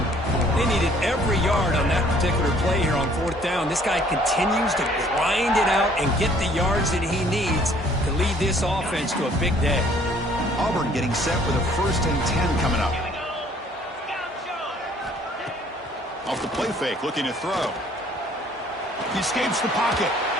they needed every yard on that particular play here on 4th down. This guy continues to grind it out and get the yards that he needs to lead this offense to a big day. Auburn getting set with a 1st and 10 coming up. Off the play fake, looking to throw. He escapes the pocket.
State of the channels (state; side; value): normal; both; correlation 0.59